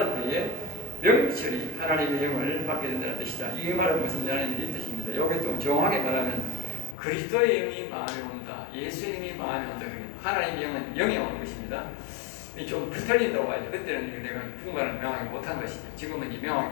때에 명철이 하나님의 영을 받게 된다는 뜻이다. 이 말은 무슨 이 뜻입니다. 여기 좀 정확하게 말하면 그리스도의 영이 마음에 온다. 예수님이 마음에 온다. 하나님의 영은 영이 오는 것입니다. 좀 틀린다고 하죠. 그때는 내가 분간을 명확히 못한 것이죠. 지금은 이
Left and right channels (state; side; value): drops out; right; at 7.0 s